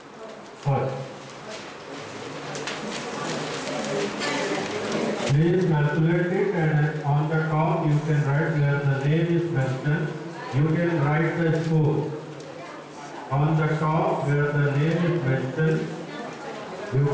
First. Please calculate it, and on the top you can write where the name is mentioned. You can write the score. On the top where the name is mentioned, you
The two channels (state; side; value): identical; both; correlation 1.00